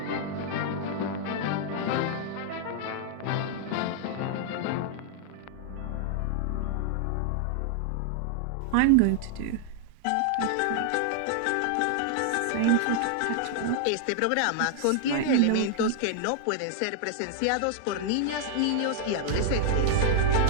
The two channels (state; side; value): different; both; correlation -0.01